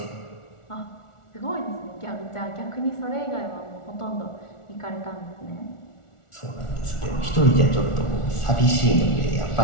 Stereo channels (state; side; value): late; right; 1.4 ms